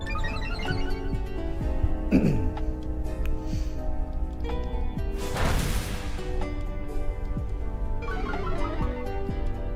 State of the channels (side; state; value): both; identical; correlation 1.00